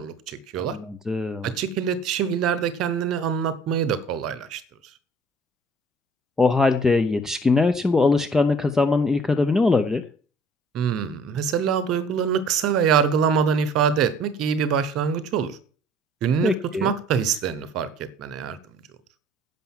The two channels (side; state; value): both; normal; correlation 0.54